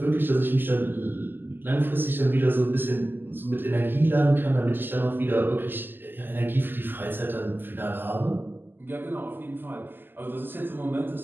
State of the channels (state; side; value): late; left; 0.094 ms